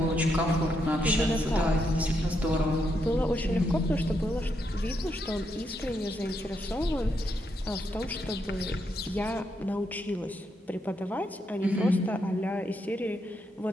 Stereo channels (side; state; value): both; normal; correlation 0.80